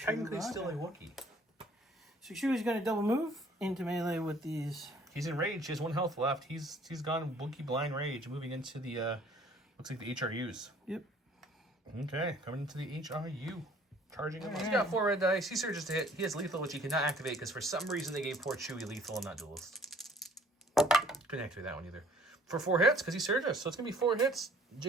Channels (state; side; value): normal; both; correlation 0.56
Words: still a Wookiee. So Chewie's going to double move into melee with these. He's in rage. He has 1 health left. He's gone Wookiee blind rage, moving into the looks like the HRUs. Yep. Okay, coming into the HRU. Charging him. He's got 4 red dice. He surges to hit. He has lethal, which he cannot activate because for some reason they gave poor Chewie lethal and not duelist. Couldn't activate that one either. For 4 hits, because he surges. So it's going to be 4 hits.